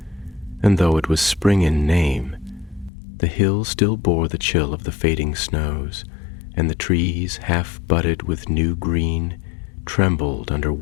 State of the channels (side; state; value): right; drops out; at 2.9 s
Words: and though it was spring in name, the hills still bore the chill of the fading snows, and the trees, half budded with new green, trembled under